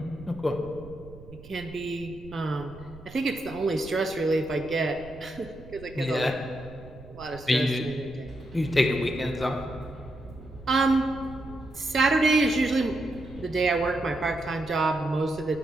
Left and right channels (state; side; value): noise; right; rumble, 18 dB below the sound